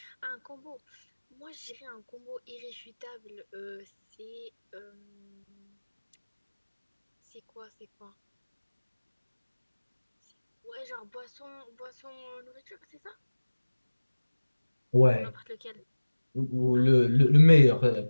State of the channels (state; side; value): inverted; both; correlation -1.00